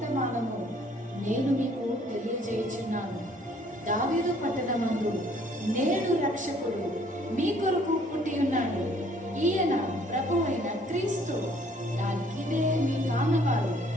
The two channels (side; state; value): both; normal; correlation 0.60